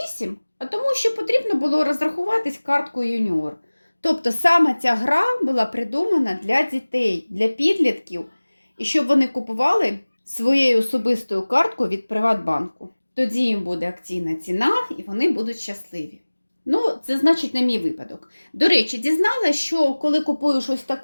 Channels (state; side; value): inverted; both; correlation -1.00